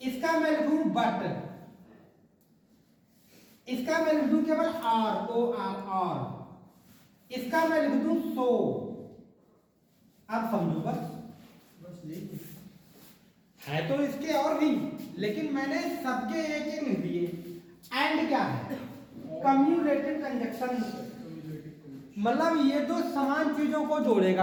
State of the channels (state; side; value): identical; both; correlation 1.00